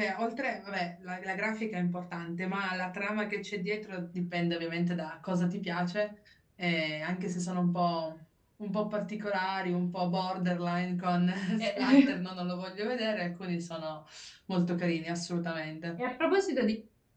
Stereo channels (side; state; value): both; identical; correlation 1.00